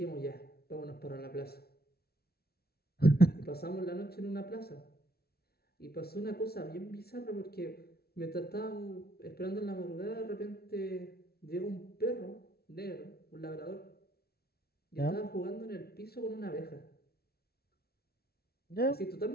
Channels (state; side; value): late; right; 0.45 ms